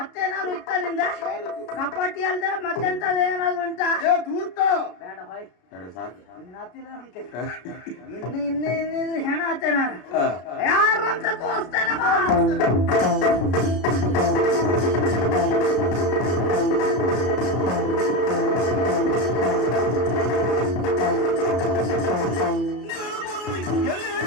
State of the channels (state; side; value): late; right; 33 ms